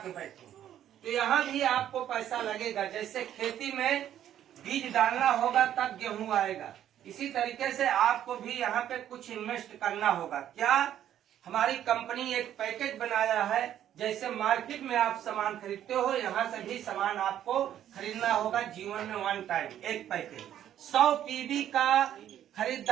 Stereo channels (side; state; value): left; quieter; 11.0 dB